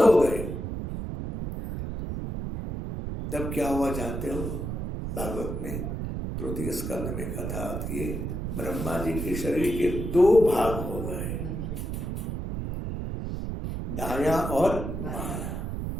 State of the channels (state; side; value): noise; right; rumble, 4 dB below the sound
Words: गए। तब क्या हुआ जानते हो? भागवत में 3 स्कंद में कथा आती है, ब्रह्मा जी के शरीर के दो भाग हो गए, दाया और बाया।